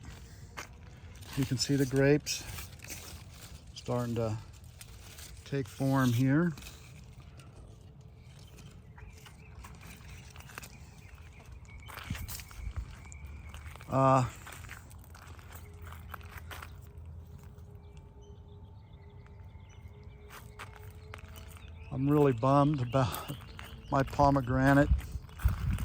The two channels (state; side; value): identical; both; correlation 1.00